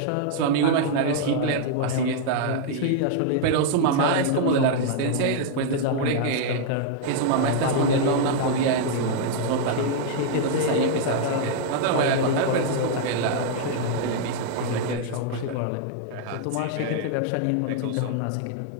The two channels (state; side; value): different; both; correlation -0.01